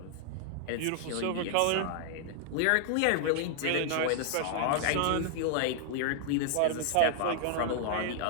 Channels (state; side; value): different; both; correlation 0.00